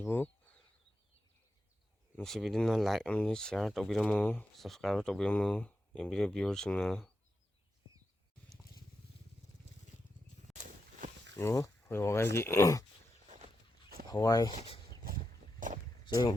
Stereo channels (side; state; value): both; normal; correlation 0.87